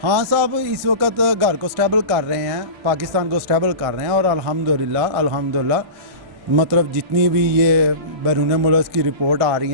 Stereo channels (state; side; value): late; left; 1.6 ms